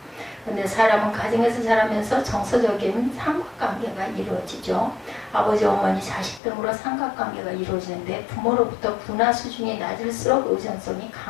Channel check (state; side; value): drops out; right; at 6.4 s